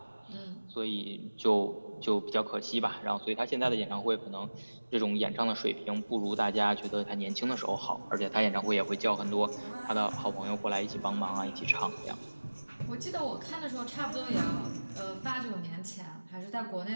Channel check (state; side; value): inverted; both; correlation -1.00